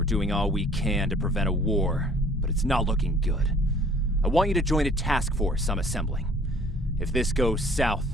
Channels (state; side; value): normal; both; correlation 0.54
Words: doing all we can to prevent a war, but it's not looking good. I want you to join a task force I'm assembling. If this goes south,